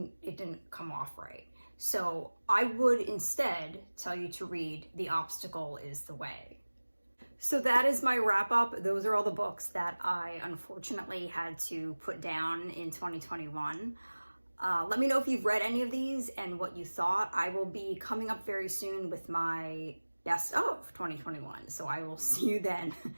come off right. So I would instead tell you to read The Obstacle is the Way. So that is my wrap up. Those are all the books that I unfortunately had to put down in 2021. Let me know if you've read any of these and what you thought. I will be coming up very soon with my best of 2021. So I will see you then.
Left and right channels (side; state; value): both; inverted; correlation -1.00